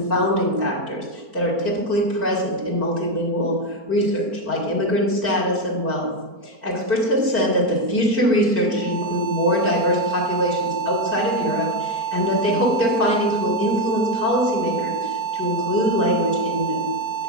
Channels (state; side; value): late; left; 4.4 ms